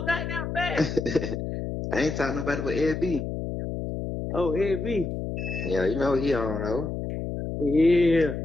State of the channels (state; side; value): noise; left; hum, 5 dB below the sound